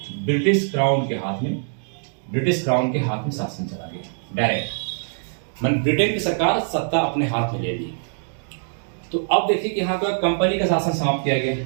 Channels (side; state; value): left; silent; digital silence